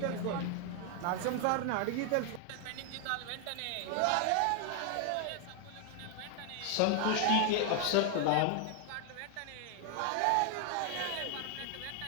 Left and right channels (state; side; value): different; both; correlation 0.00